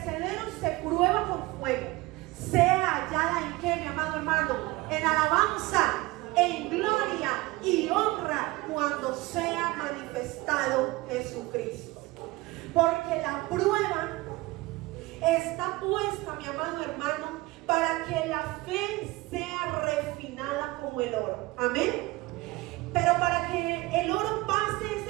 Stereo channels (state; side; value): quieter; left; 20.8 dB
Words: se prueba con fuego, sea hallada en qué, mi amado hermano, en alabanza, en gloria y honra cuando sea manifestado Jesucristo. Porque la prueba está puesta, mi amado hermano, para que la fe sea refinada como el oro. Amén. Pero para que el oro pase